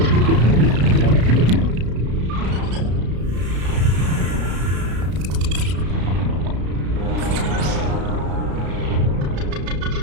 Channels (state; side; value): late; left; 33 ms